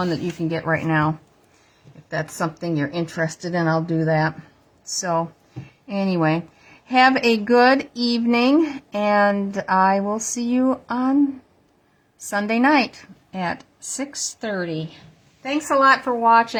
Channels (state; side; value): identical; both; correlation 1.00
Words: that you can get right now. If that's something you're interested in, I'll do that. So, anyway, have a good evening, and I will see you on Sunday night at 6:30. Thanks a lot for